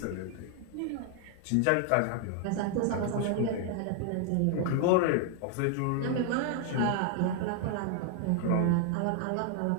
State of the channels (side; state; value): both; different; correlation 0.00